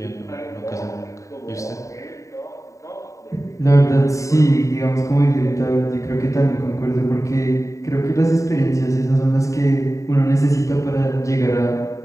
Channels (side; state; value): right; late; 0.16 ms